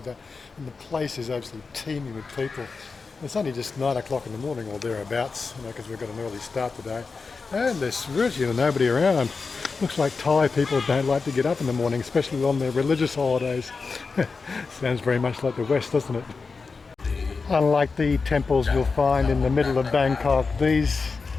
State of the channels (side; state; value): right; quieter; 4.6 dB